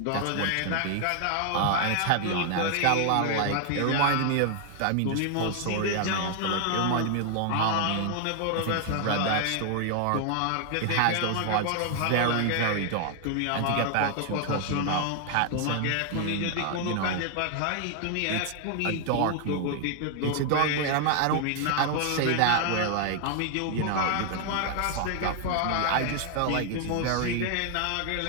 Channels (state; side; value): different; both; correlation 0.00